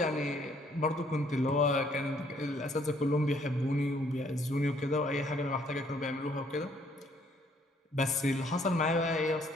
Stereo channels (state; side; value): normal; both; correlation 0.65